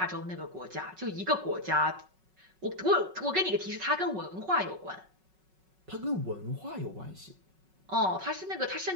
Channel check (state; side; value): late; left; 5.4 ms